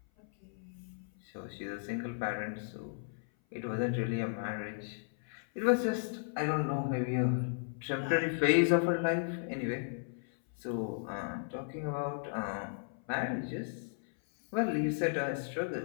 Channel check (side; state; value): right; silent; 54 dB below the other